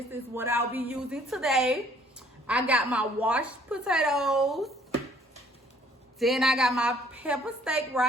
is what I'll be using today. I got my washed potatoes. Then I got my pepper steak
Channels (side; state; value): both; normal; correlation 0.60